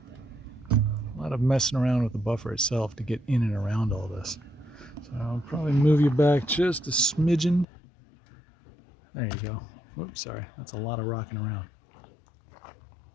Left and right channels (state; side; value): drops out; right; at 7.7 s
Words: messing around with the buffer itself to get in and around all this. So I'll probably move you back just a smidgen. There you go. Whoops, sorry, that's a lot of rocking around.